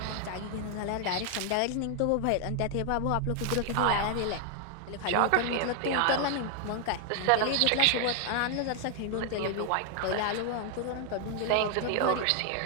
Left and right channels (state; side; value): different; both; correlation 0.00